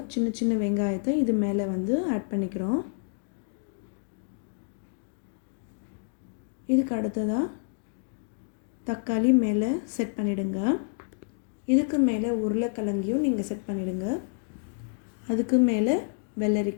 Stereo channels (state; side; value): silent; right; digital silence